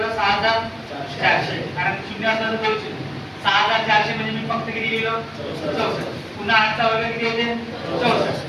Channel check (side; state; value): both; identical; correlation 1.00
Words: 6400. कारण शून्य असला तर 6400 म्हणजे मी फक्त किती लिहिलं? 64. पुन्हा 8 चा वर्ग किती होते? 64.